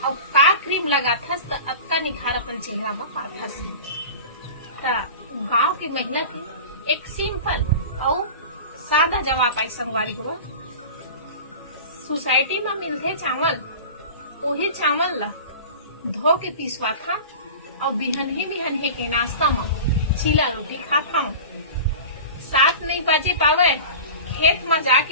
और का क्रीम लगाथस तो अक्का निखार अपन चेहरा में पाथस। गांव की महिला की एक सिंपल और सादा जवाब आई संगवारी हुआ। सोसाइटी में मिलते चावल वही चावल ला धो के पिसवा था और बिहनहे के नाश्ता में चीला रोटी खाता हूँ। 7 नहीं बजे पावे खेत में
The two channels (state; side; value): inverted; both; correlation -0.34